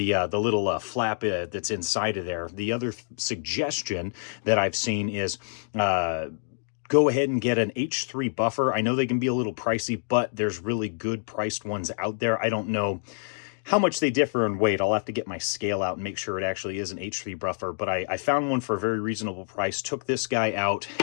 little flap that's inside of there. The other suggestion that I've seen is go ahead and get an H3 buffer. I know they can be a little pricey, but there's really good priced ones out there. I don't know how much they differ in weight. I'll have to get my scale out and make sure it actually is an H3 buffer, but I found one for a very reasonable price, took this guy out,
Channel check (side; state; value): right; silent; digital silence